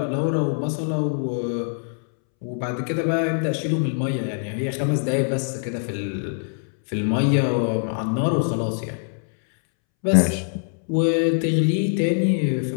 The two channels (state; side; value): silent; right; 63 dB below the other